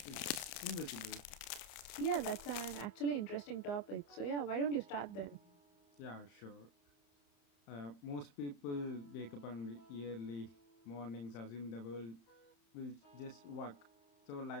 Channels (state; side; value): late; right; 31 ms